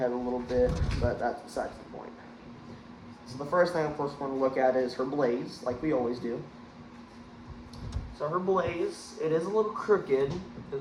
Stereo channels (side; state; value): both; identical; correlation 1.00